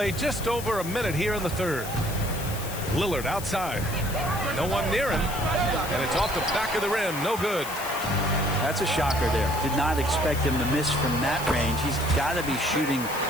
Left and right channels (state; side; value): noise; left; hiss, 11 dB below the sound